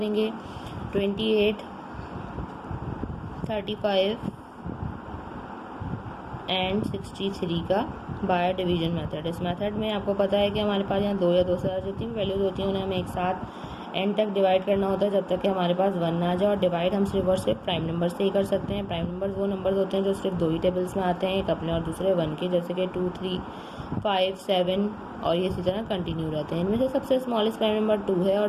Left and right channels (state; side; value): identical; both; correlation 1.00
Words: 28, 35 एंड 63 का बाय डिवीजन मेथड। इस मेथड में आपको पता है कि हमारे पास यहाँ दो या दो से ज़्यादा जितनी भी वैल्यूज होती हैं उन्हें हमें एक साथ एंड तक डिवाइड करना होता है जब तक कि हमारे पास 1 ना आ जाए। और डिवाइड हम सिर्फ और सिर्फ प्राइम नंबर से ही कर सकते हैं। प्राइम नंबर्स वो नंबर्स होते हैं जो सिर्फ दो ही टेबल्स में आते हैं, एक अपने और दूसरे 1 के, जैसे कि 2, 3, 5, 7 और ये इसी तरह कंटिन्यू रहते हैं। इनमें से सबसे स्मॉलेस्ट प्राइम नंबर 2 है